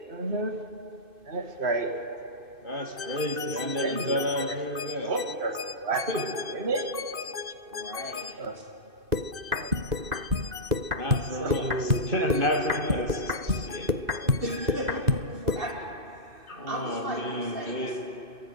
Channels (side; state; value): left; late; 2.6 ms